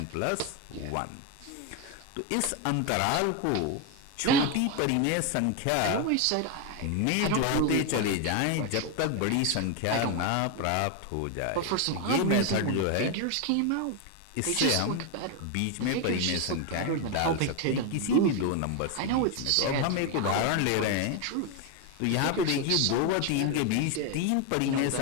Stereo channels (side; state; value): both; different; correlation 0.01